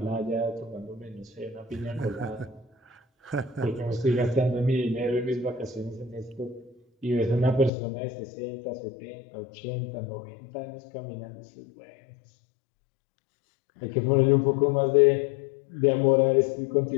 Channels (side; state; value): right; drops out; at 7.7 s